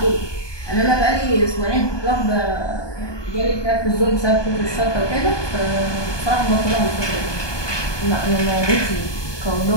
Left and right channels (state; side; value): late; right; 1.2 ms